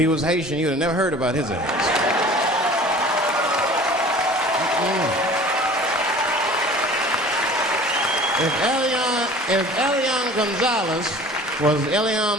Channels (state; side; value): normal; both; correlation 0.44